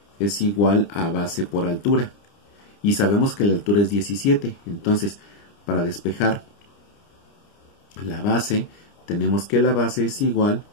es igual a base por altura. Y sabemos que la altura es 17. Entonces, para despejar la base, tenemos que la base es igual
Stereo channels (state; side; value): late; right; 30 ms